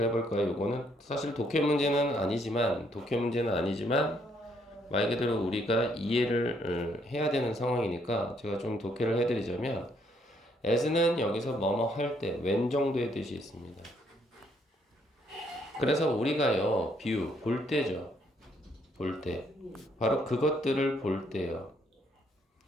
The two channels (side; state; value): both; normal; correlation 0.70